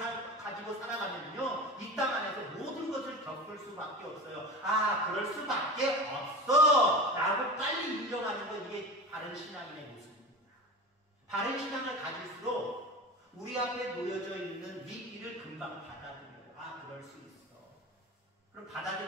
가지고 살아가면요, 이 땅 안에서 모든 것을 겪을 수밖에 없어요. 아, 그럴 수밖에 없어 라고 빨리 인정하는 건 이게 바른 신앙인의 모습입니다. 바른 신앙을 가질수록 우리 앞에 놓여져 있는 위기를 금방 받아들여요. 아, 그럴 수 있어. 그럼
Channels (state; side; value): normal; both; correlation 0.31